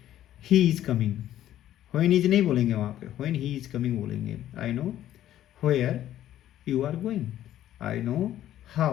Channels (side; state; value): right; quieter; 12.4 dB